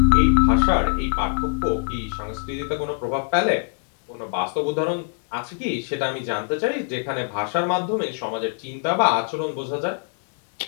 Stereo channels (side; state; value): right; silent; digital silence